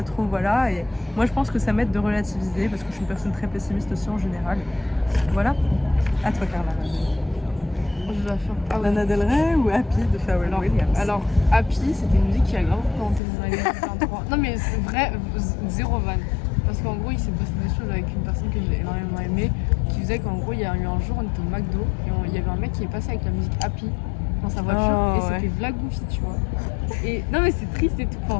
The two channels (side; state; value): right; drops out; at 13.2 s